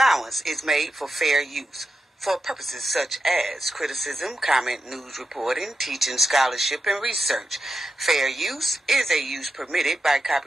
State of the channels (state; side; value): normal; both; correlation 0.88